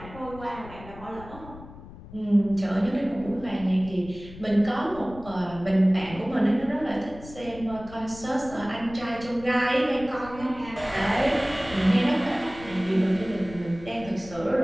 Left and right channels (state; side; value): noise; left; rumble, 16 dB below the sound